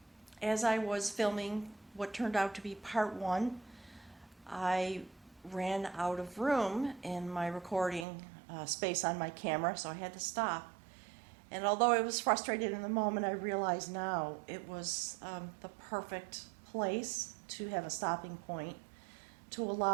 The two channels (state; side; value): drops out; left; at 8.1 s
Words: as I was filming what turned out to be part 1, I ran out of room in my recording space on my camera, so I had to stop. And although I was frustrated in the moment, I realize now it was the perfect place to have a stopping point to